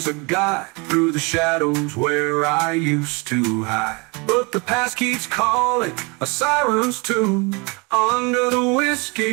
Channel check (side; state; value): left; quieter; 29.4 dB